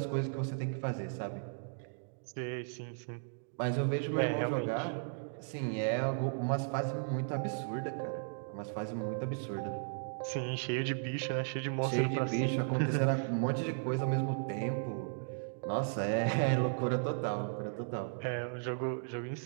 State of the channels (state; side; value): silent; left; digital silence